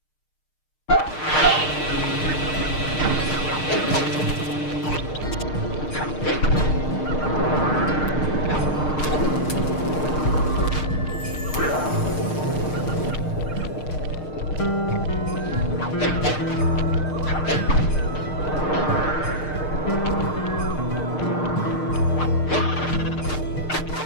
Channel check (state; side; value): late; right; 6.6 ms